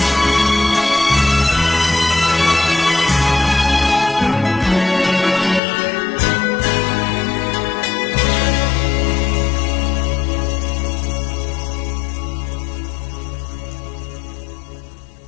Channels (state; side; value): drops out; right; at 5.6 s